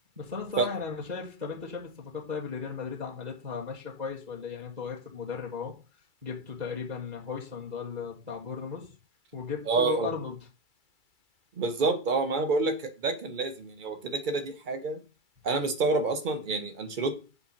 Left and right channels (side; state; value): left; late; 2.3 ms